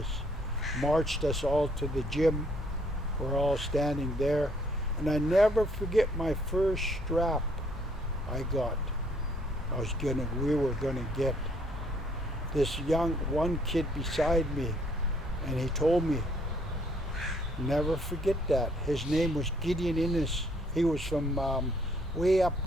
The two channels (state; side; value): normal; both; correlation 0.65